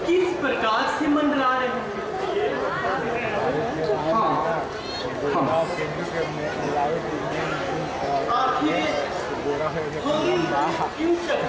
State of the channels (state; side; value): identical; both; correlation 1.00